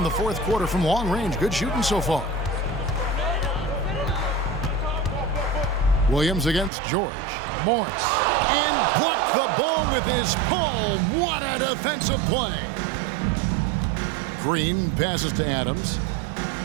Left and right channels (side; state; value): left; drops out; at 6.7 s